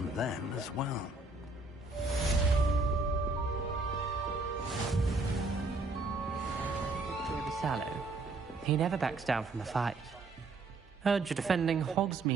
them as well. Sallow. He never backs down from a fight. Heard you're defending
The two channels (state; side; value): quieter; left; 3.4 dB